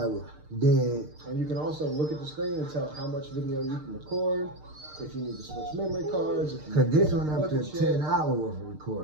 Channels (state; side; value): late; left; 6.6 ms